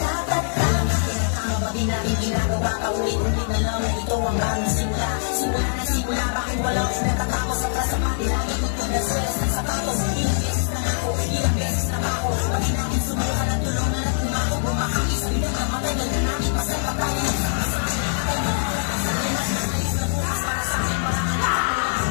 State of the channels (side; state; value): right; silent; digital silence